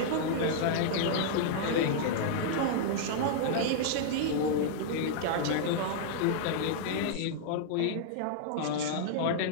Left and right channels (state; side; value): different; both; correlation -0.01